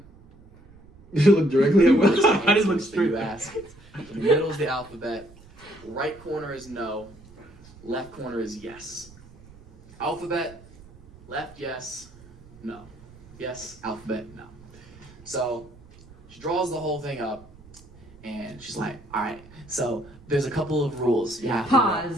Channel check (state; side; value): noise; right; rumble, 22 dB below the sound